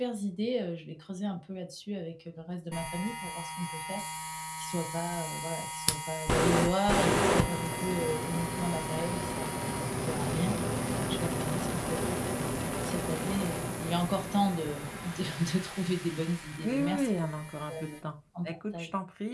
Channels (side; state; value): both; identical; correlation 1.00